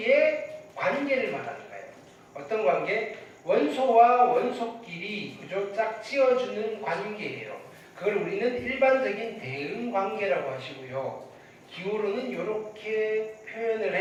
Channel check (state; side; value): identical; both; correlation 1.00